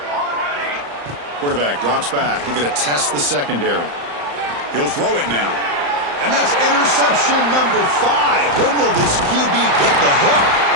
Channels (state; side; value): late; left; 35 ms